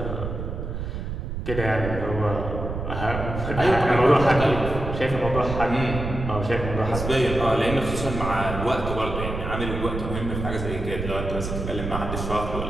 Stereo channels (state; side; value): noise; right; rumble, 5 dB below the sound